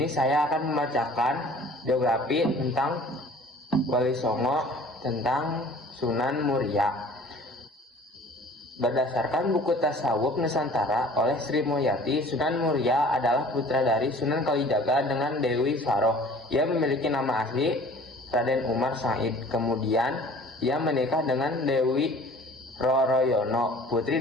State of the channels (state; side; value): normal; both; correlation 0.48